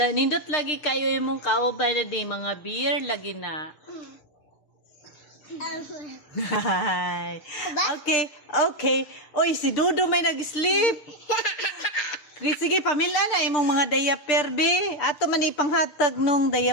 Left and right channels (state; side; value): late; right; 6.6 ms